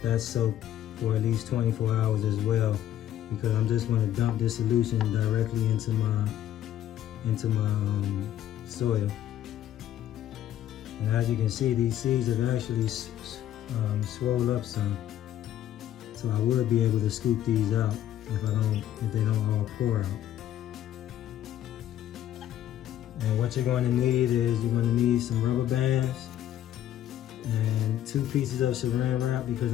that's soaked for at least 24 hours as well, because I'm just going to dump this solution directly into my soil. And as you can see, these seeds have actually swelled up some. So I would be able to scoop these out if they don't all pour out. And what you're going to need is you're going to need some rubber bands and 2 pieces of saran wrap, because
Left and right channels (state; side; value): quieter; right; 11.7 dB